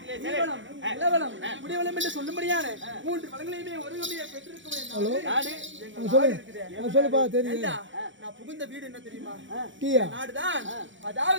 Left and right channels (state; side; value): late; left; 0.55 ms